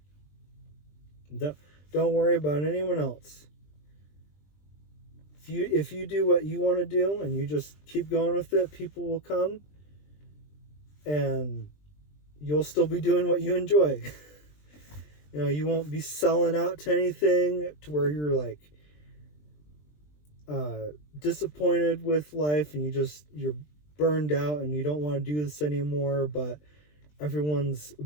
Don't worry about anyone else. If you do what you want to do and you just keep going with it, people will come and you'll still be doing what you enjoy. You won't be selling out to anything to where you're like disappointed with life and you're burned out and you don't want to do this anymore, but everyone's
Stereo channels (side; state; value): right; late; 20 ms